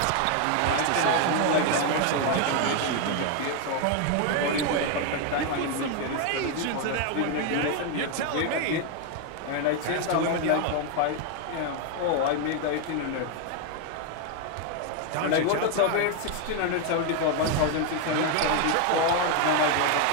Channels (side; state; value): both; different; correlation 0.01